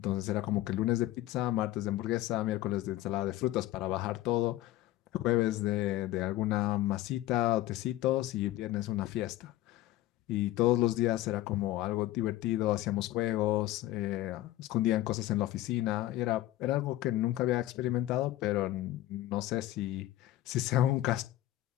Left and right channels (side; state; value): right; quieter; 15.2 dB